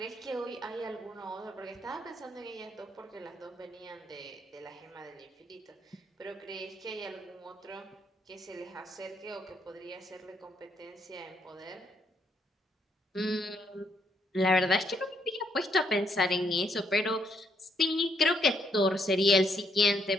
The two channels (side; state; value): both; normal; correlation 0.73